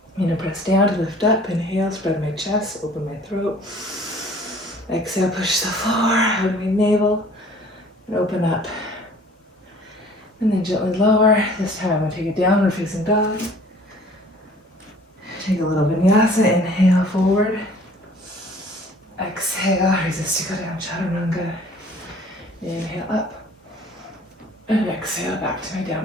Press down to lift up, inhale, spread my chest, open my throat. Exhale, push the floor, hug my navel, and open up. And then gently lower. This time I'm going to take a downward facing dog. Take a little vinyasa, inhale forward. Exhale, resist to go down, chaturanga. Inhale up. And exhale back to my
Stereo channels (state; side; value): normal; both; correlation 0.52